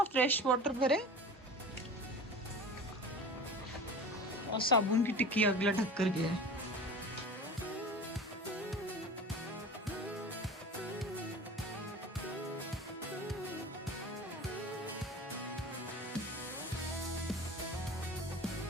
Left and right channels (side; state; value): both; normal; correlation 0.36